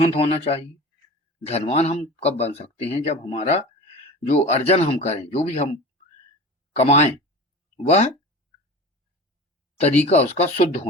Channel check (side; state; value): both; normal; correlation 0.35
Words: होना चाहिए। धनवान हम कब बन सकते हैं? जब हमारा जो अर्जन हम करें, जो भी हम कमाएं, वह तरीका उसका शुद्ध